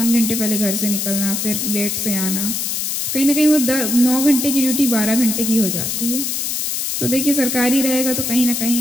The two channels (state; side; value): noise; left; hiss, 1 dB below the sound